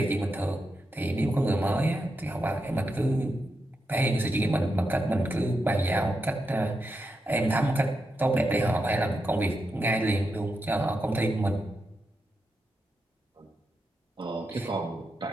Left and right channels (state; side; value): normal; both; correlation 0.86